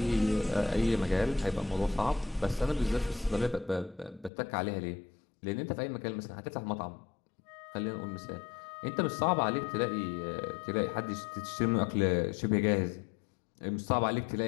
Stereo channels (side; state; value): right; drops out; at 4.3 s